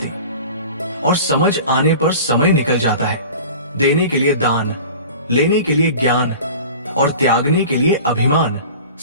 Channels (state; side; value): inverted; both; correlation -0.39